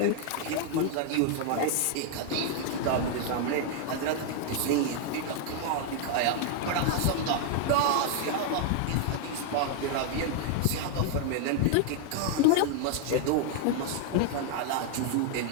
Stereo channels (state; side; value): different; both; correlation 0.00